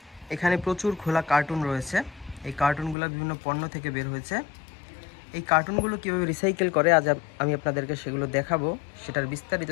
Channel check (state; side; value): drops out; right; at 3.0 s